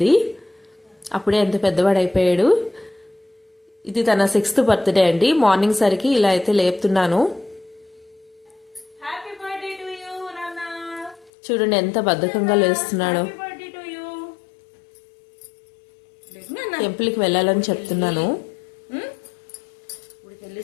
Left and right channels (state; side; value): drops out; right; at 11.3 s